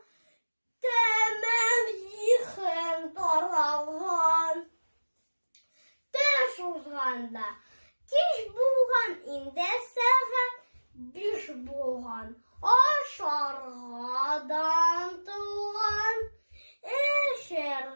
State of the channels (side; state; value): both; inverted; correlation -1.00